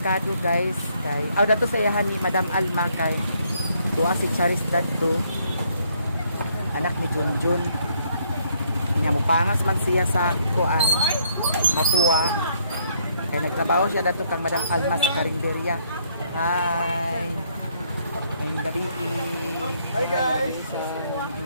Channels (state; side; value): inverted; both; correlation -0.69